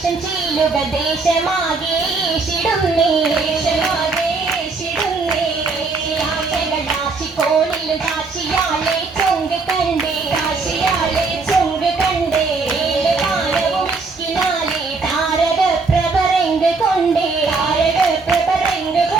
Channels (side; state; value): left; quieter; 4.1 dB